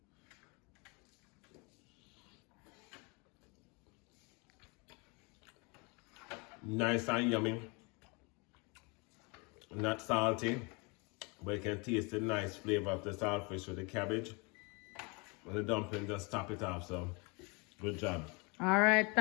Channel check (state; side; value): quieter; right; 29.9 dB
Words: nice and yummy. Not salty, but you can taste the nice flavor of the saltfish with the cabbage. And the dumpling just top it off, so good job. Alright,